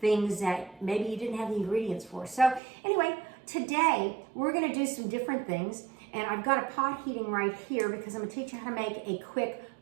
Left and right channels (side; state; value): left; drops out; at 2.6 s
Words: that maybe you didn't have the ingredients for. So anyway, today we're going to do some different things. And I've got a pot heating right here because I'm going to teach you how to make a quick